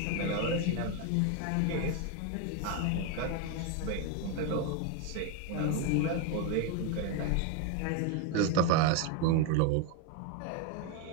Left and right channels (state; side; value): different; both; correlation 0.02